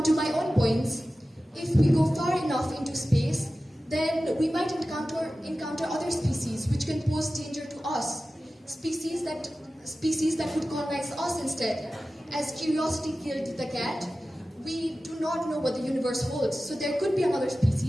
to my own points, if we go far enough into space, then we might encounter other species which can pose danger to us. Species that would colonize us instead. As curiosity killed the cat, we do not know what the universe holds. So there could be another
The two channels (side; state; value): both; normal; correlation 0.95